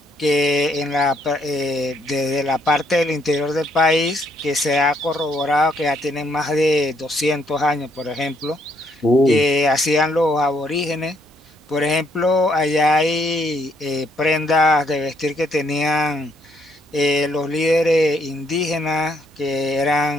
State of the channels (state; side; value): normal; both; correlation 0.71